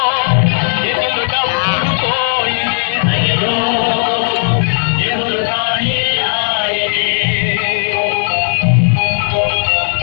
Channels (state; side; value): silent; right; digital silence